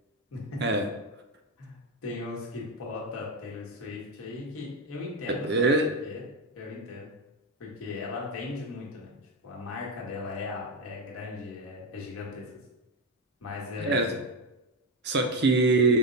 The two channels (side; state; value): both; normal; correlation 0.12